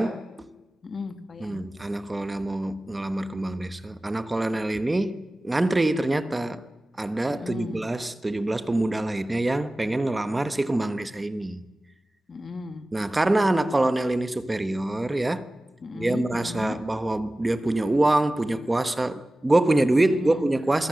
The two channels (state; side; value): normal; both; correlation 0.97